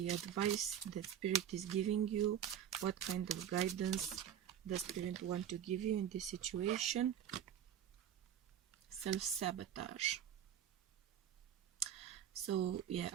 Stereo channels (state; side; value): quieter; left; 9.9 dB